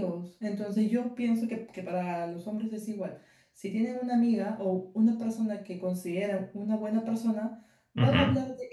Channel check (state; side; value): identical; both; correlation 1.00